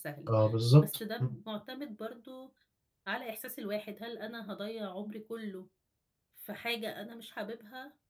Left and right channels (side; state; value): both; identical; correlation 1.00